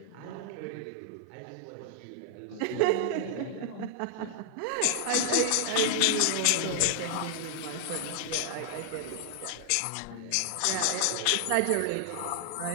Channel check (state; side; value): different; both; correlation 0.00